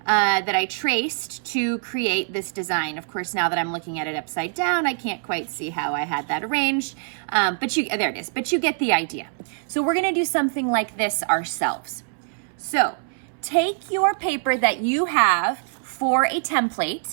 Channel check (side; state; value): left; silent; 63 dB below the other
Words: that I traced to create this design. Of course, now that I'm looking at it upside down, I can't quite see how I had that arranged, there it is, but you get the idea. So we're gonna do something like this ourselves. So take your paper that you have for a